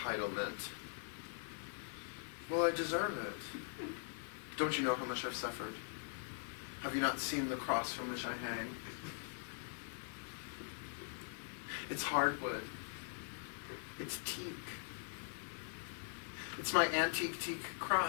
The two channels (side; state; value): right; silent; digital silence